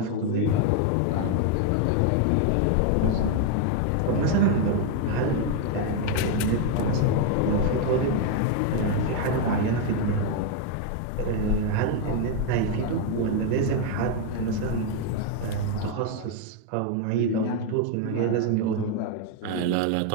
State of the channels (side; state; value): both; different; correlation 0.01